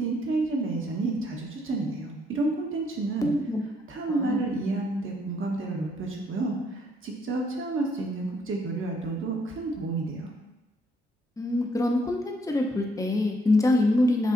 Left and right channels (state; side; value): normal; both; correlation 0.70